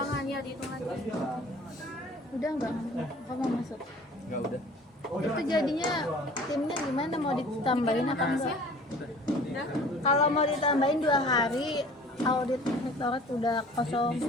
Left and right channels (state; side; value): normal; both; correlation 0.48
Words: ya, dihitung lagi. Udah enggak? Kamu masuk. enggak udah. Itu jadinya timnya gimana, mau ditambahin apa enggak? Udah. Kalau mau ditambahin 2 hari, audit rektorat udah kosong.